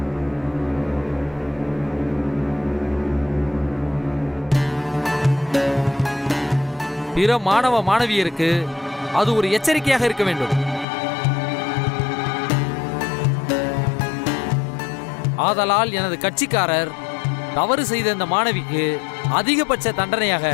பிற மாணவ மாணவியருக்கு அது ஒரு எச்சரிக்கையாக இருக்க வேண்டும். ஆதலால் எனது கட்சிக்காரர் தவறு செய்த இந்த மாணவிக்கு அதிகபட்ச தண்டனையாக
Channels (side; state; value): right; drops out; at 10.9 s